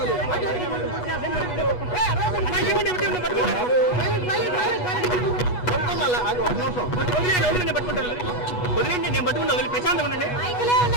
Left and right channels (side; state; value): right; late; 8.2 ms